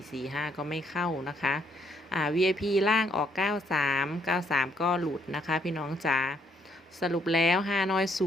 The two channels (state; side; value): normal; both; correlation 0.70